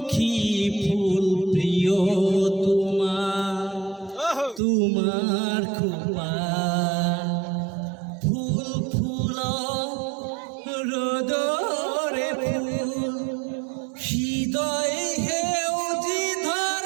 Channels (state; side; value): drops out; left; at 4.6 s